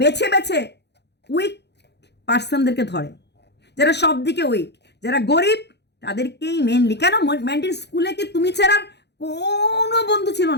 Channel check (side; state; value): right; late; 0.49 ms